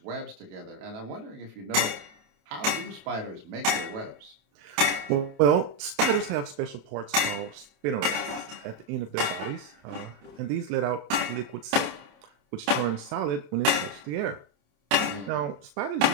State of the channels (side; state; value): left; late; 28 ms